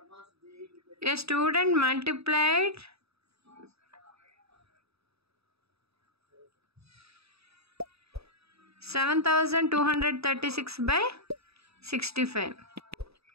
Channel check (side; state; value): left; late; 0.78 ms